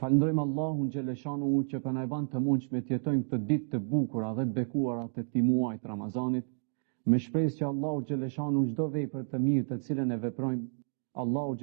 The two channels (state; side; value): silent; left; 57 dB below the other